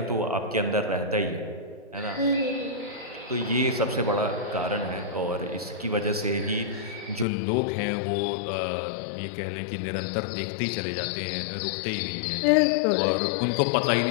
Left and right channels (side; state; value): right; drops out; at 7.2 s